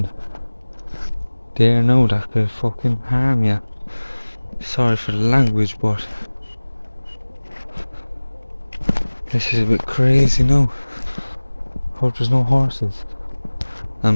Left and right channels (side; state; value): both; inverted; correlation -1.00